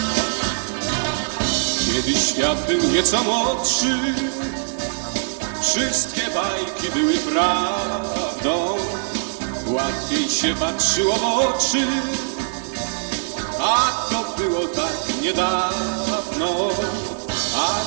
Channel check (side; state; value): left; silent; digital silence